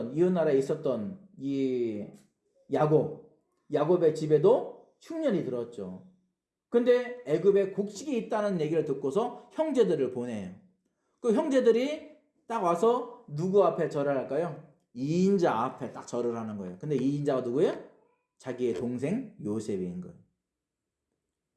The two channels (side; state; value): both; identical; correlation 1.00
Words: 이웃 나라에 있었던 이 야곱의 집에도 흉년이 들었죠. 근데 애굽에 곡식이 있다는 얘기를 듣고서 형제들을 보내요. 그 형제들이 딱 와서 누구 앞에 절을 할까요? 이인자 앞에 딱 절을 하는 거예요. 근데 이인자가 누구예요? 자기의 동생 요셉인 거예요.